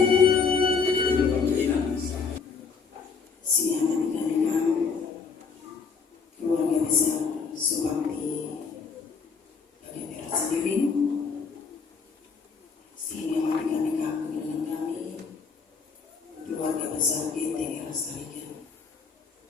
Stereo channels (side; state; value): right; quieter; 5.3 dB